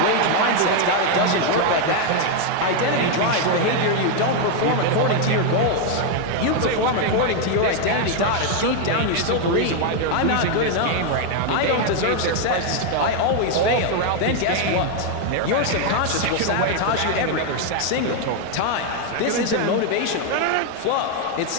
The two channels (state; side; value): different; both; correlation 0.01